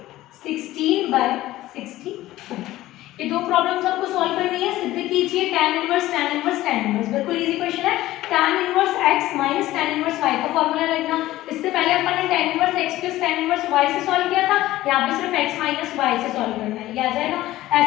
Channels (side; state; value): right; quieter; 15.9 dB